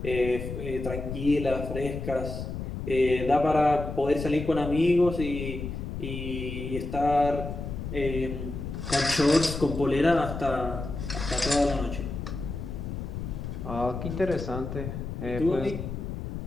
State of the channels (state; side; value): noise; left; rumble, 6 dB below the sound